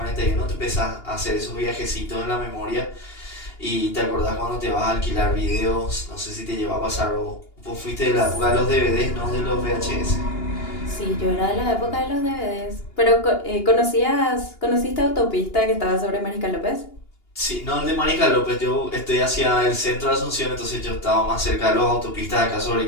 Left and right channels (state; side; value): late; right; 2.8 ms